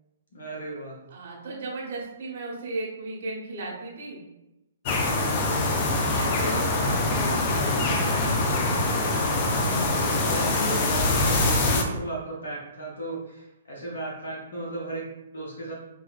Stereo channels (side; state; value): both; inverted; correlation -0.37